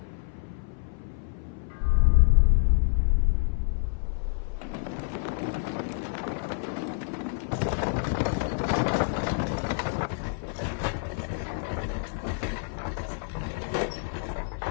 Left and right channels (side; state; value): right; silent; 58 dB below the other